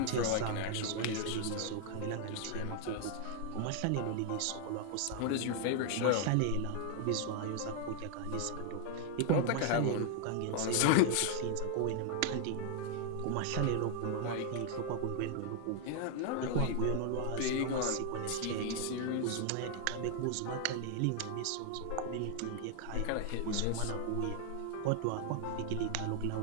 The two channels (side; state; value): both; different; correlation 0.00